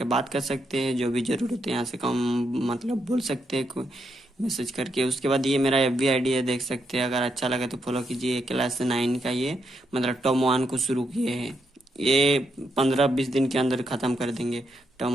बात कर सकते हैं। जो भी ज़रूरत है यहाँ से कम मतलब बोल सकते हैं कोई मैसेज करके। उसके बाद ये मेरा एफ बी आई डी है, देख सकते हैं। अगर अच्छा लगे तो फॉलो कीजिए। क्लास 9 का ये मतलब टर्म 1 को शुरू किए हैं। ये 15-20 दिन के अंदर ख़त्म कर देंगे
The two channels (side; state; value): both; normal; correlation 0.80